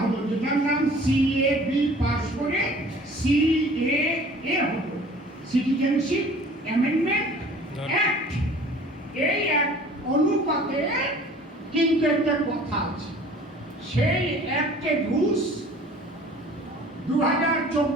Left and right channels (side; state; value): both; normal; correlation 0.48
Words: হলো, যেটার নাম সিএবি পাশ করে সিএএ হলো, সিটিজেনশিপ অ্যামেন্ডমেন্ট অ্যাক্ট। এই অ্যাক্ট অনুপাতে কিন্তু একটা কথা আছে, সেই অ্যাক্টের রুলস